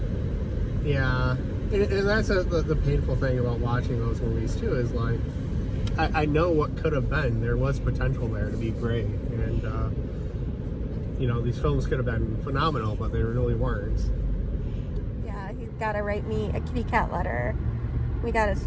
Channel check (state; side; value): identical; both; correlation 1.00